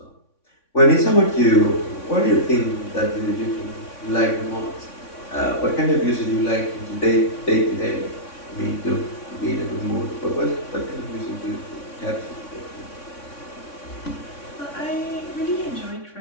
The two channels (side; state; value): right; late; 3.6 ms